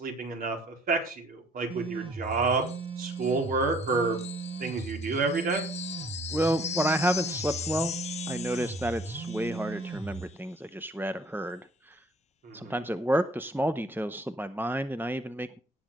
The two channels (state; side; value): normal; both; correlation 0.57